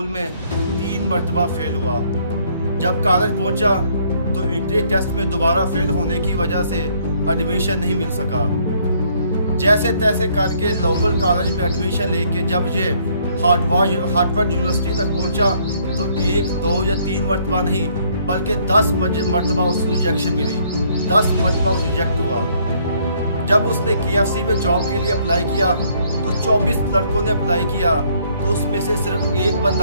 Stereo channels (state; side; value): inverted; both; correlation -0.65